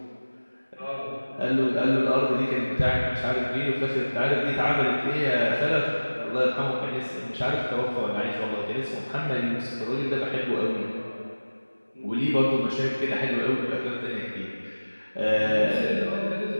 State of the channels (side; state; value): both; inverted; correlation -1.00